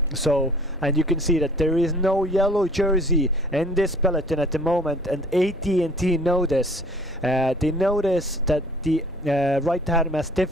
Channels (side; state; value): both; normal; correlation 0.52